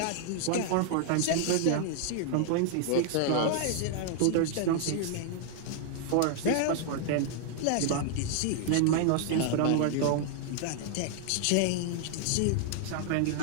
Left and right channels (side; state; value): both; different; correlation 0.00